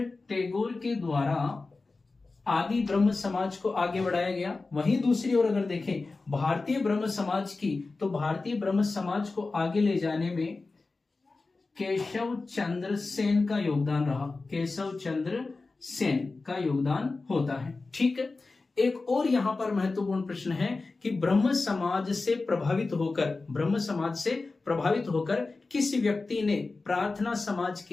टैगोर के द्वारा आदि ब्रह्म समाज को आगे बढ़ाया गया। वहीं दूसरी ओर अगर देखें भारतीय ब्रह्म समाज की, तो भारतीय ब्रह्म समाज को आगे ले जाने में केशव चंद्र सेन का योगदान रहा। केशव चंद्र सेन का योगदान होता है। ठीक है, एक और यहां पर महत्वपूर्ण प्रश्न है कि ब्रह्म समाज से प्रभावित होकर किस व्यक्ति ने प्रार्थना समाज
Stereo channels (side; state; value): right; quieter; 3.7 dB